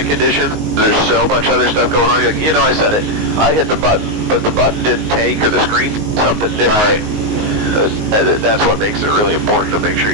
condition. There's so much other stuff going on. You're like, I said it. I hit the button, but the button didn't take, or the screen something different. Right. That's what makes it really important to make sure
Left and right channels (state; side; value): late; left; 19 ms